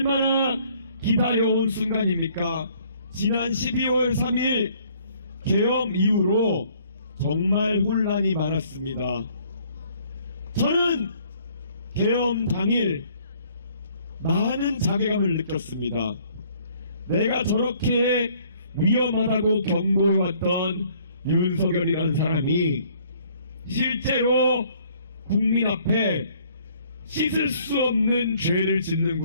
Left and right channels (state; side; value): inverted; both; correlation -0.61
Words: 기다려온 순간입니까? 지난 12월 3일 계엄 이후로 정말 혼란이 많았습니다. 저는 계엄 당일 많은 자괴감을 느꼈습니다. 내가 저렇게 위험하다고 경고해왔던 윤석열이라는 사람이 실제로 국민 앞에 씻을 수 없는 죄를